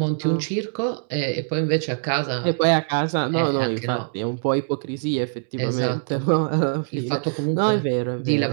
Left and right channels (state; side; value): silent; left; digital silence